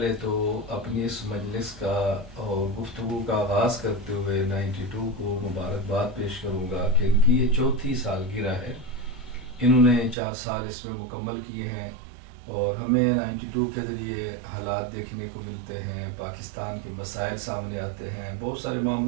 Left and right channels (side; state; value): left; drops out; at 10.2 s